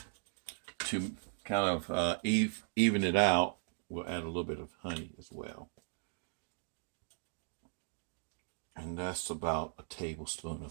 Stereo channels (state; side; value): silent; left; digital silence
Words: to kind of even it out, we'll add a little bit of honey as well. And that's about a tablespoon